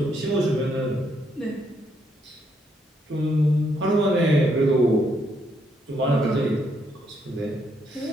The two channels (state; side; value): normal; both; correlation 0.74